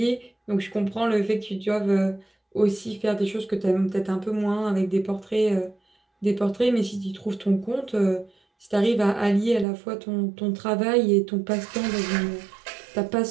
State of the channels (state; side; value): drops out; left; at 9.7 s